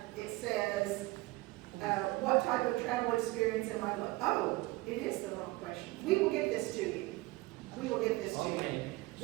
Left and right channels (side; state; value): left; quieter; 20.8 dB